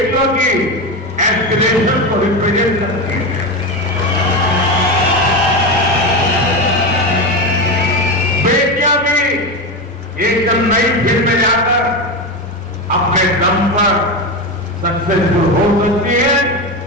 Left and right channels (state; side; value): normal; both; correlation 0.17